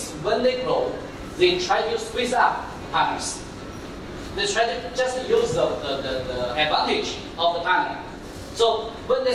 when they grow, they try to squeeze up partners. They try to just use the advantage of the partner. So when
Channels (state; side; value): identical; both; correlation 1.00